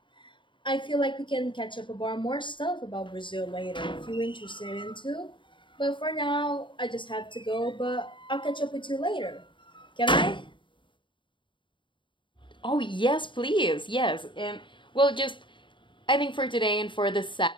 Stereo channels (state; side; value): late; right; 0.24 ms